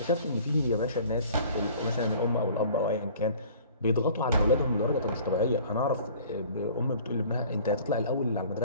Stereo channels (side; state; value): both; inverted; correlation -0.49